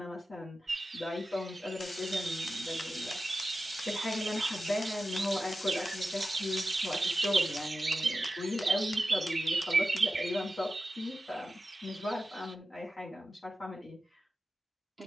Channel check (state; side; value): normal; both; correlation 0.93